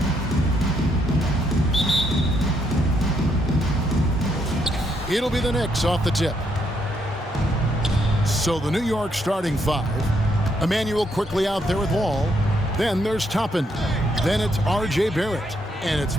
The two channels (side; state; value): both; normal; correlation 0.74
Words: It'll be the Knicks off the tip. So the New York starting five. Emmanuel quickly out there with Wall. Then there's Toppin. Then it's R.J. Barrett. And it's